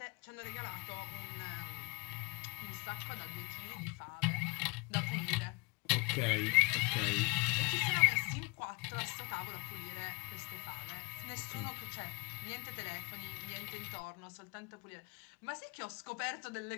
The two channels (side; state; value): right; quieter; 27.9 dB